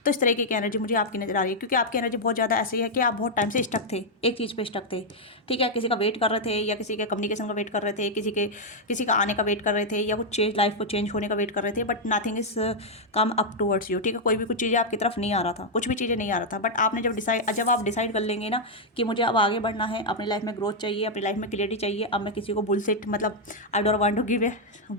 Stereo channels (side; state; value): both; normal; correlation -0.02